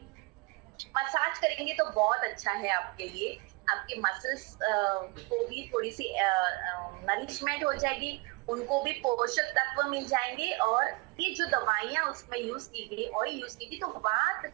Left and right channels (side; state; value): left; quieter; 27.2 dB